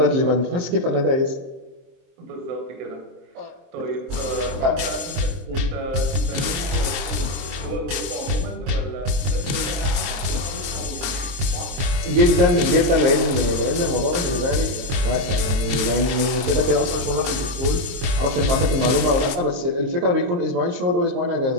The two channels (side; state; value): left; late; 23 ms